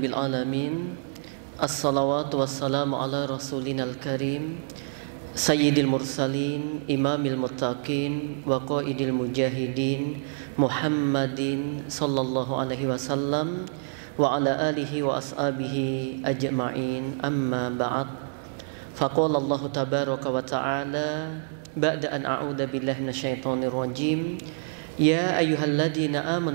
alamin. Assalawatu wassalamu ala rasulinal karim, sayyidil mursalin, imamil muttaqin, wa qaidil mujahidin, Muhammadin sallallahu alaihi wasallam, wa ala alihi wa ashabihi ajma'in. Amma ba'd. Faqala Allah tabaraka wa ta'ala ba'da an a'udzu billahi minasyaitonir rajim. Ya ayyuhalladzina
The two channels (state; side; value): silent; left; digital silence